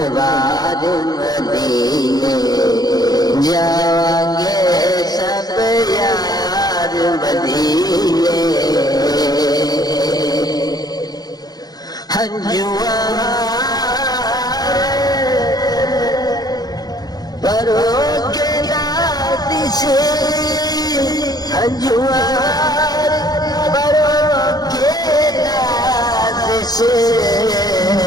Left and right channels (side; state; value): right; late; 0.19 ms